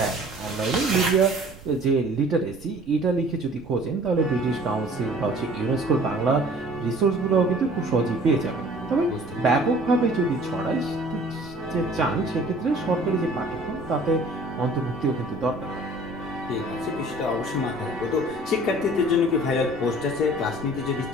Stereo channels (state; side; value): noise; right; rumble, 20 dB below the sound